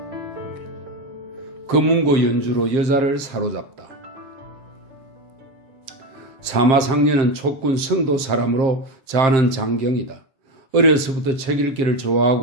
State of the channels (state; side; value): late; left; 7.6 ms